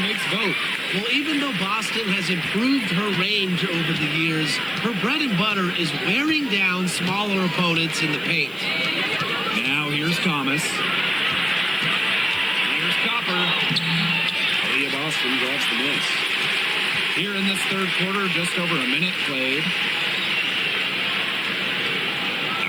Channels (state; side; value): noise; right; hiss, 23 dB below the sound